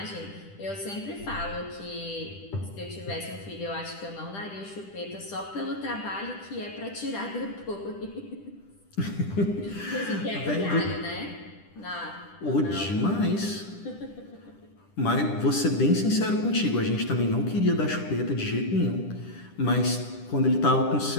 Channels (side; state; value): right; late; 10 ms